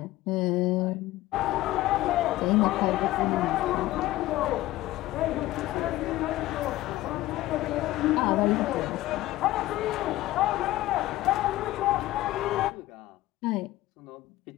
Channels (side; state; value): right; quieter; 16.5 dB